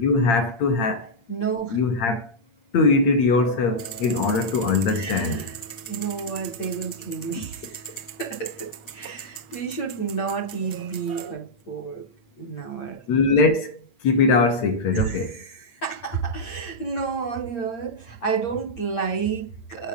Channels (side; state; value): right; late; 8.7 ms